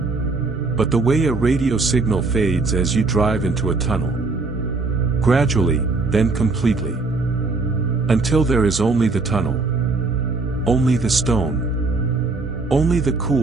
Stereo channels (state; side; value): quieter; left; 3.7 dB